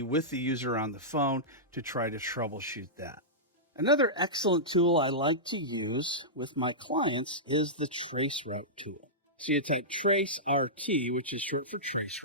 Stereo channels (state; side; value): normal; both; correlation -0.14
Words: with the user on the phone to try to troubleshoot that. Another excellent tool I like to use with my clients is the traceroute tool. So you type tracert, which is short for